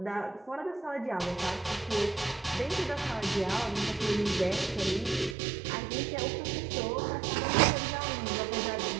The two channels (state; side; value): drops out; left; at 5.4 s